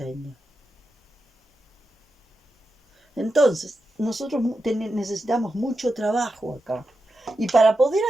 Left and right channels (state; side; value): normal; both; correlation 0.89